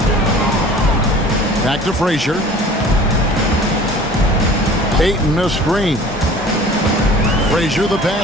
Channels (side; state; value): both; normal; correlation 0.45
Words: Back to Frazier. Ayton a screen. Frazier the